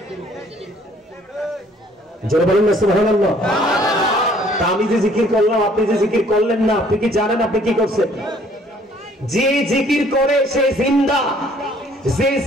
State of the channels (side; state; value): both; normal; correlation 0.60